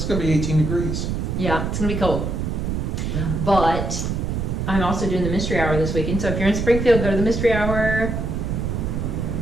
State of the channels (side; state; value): right; noise; rumble, 1 dB below the sound